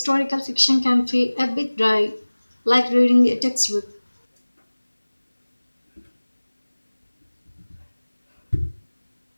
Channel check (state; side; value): inverted; both; correlation -1.00